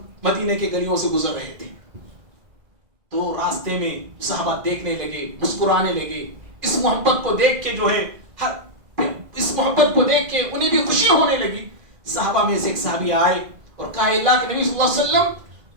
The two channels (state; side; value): late; left; 2.0 ms